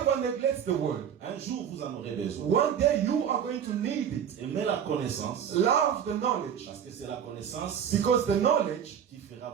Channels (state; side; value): quieter; left; 8.6 dB